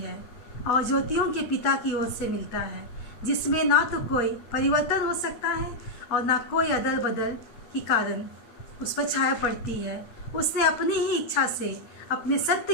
और ज्योतियों के पिता की ओर से मिलता है, जिसमें ना तो कोई परिवर्तन हो सकता है और ना कोई अदल बदल की कारण उस पर छाया पड़ती है। उसने अपनी ही इच्छा से अपने सत्य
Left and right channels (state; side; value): late; right; 8.9 ms